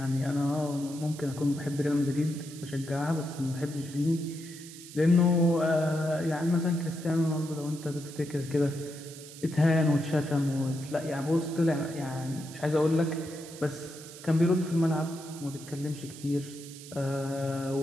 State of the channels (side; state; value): right; noise; hiss, 16 dB below the sound